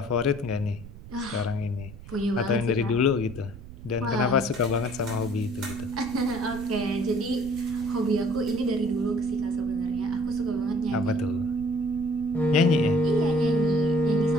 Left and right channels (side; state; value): right; noise; rumble, 15 dB below the sound